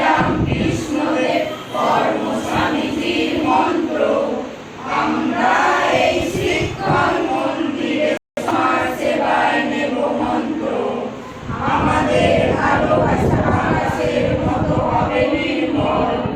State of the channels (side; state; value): both; identical; correlation 1.00